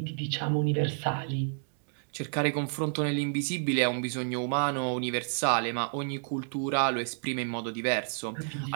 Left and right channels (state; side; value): silent; left; digital silence